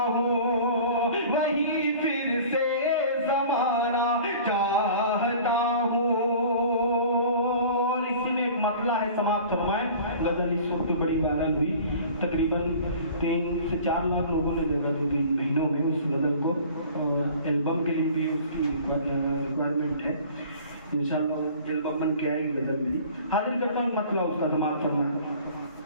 हूँ, वही फिर से ज़माना चाहता हूँ। और इसी में एक मतला है, समाप्त फरमाएं। गजल इस वक्त बड़ी वायरल हुई, तकरीबन 3 से 4 लाख लोगों ने देखा 2-3 महीनों में उस गजल को। एल्बम के लिए भी उसकी रिक्वायरमेंट है, इंशाल्लाह एल्बम बन के आएगी गजल मेरी। हाजिर करता हूँ मतलब उसका, समाप्त फरमाएं।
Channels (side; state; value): both; inverted; correlation -0.45